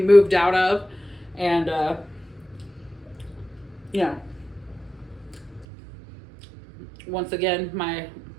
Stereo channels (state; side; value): drops out; left; at 5.7 s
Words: out of. And, once again, my